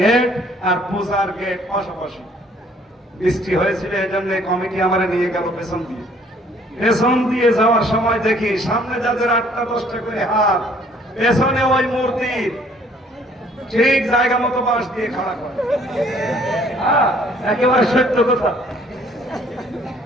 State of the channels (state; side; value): normal; both; correlation 0.60